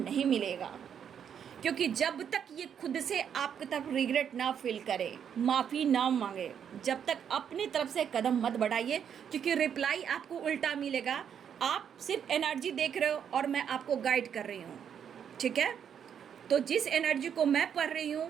मिलेगा। क्योंकि जब तक ये खुद से आपकी तरफ रिग्रेट ना फील करे, माफ़ी ना मांगे, जब तक अपनी तरफ से कदम मत बढ़ाइए, क्योंकि रिप्लाई आपको उल्टा मिलेगा। आप सिर्फ एनर्जी देख रहे हो और मैं आपको गाइड कर रही हूँ, ठीक है। तो जिस एनर्जी को मैं पढ़ रही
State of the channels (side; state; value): left; quieter; 8.2 dB